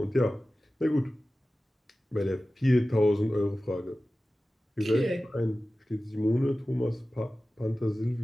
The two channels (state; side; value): normal; both; correlation 0.96